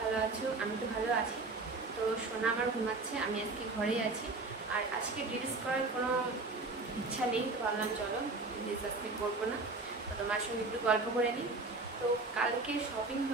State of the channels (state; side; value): quieter; left; 3.5 dB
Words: আছো। আমি তো ভালো আছি। তো সোনা আমার ঘুমাচ্ছে, আমি আজকে ঘরেই আছি। আর আজকে রিলস করার কোনো ইচ্ছা নেই, তো ভাবলাম চলো রিলস আজকে করবো না, তো তোমার সঙ্গে একটু গল্প করে নিই। তো কালকে শপিং